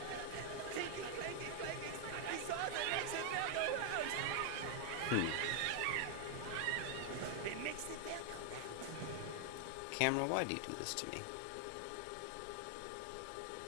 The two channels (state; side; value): different; both; correlation 0.00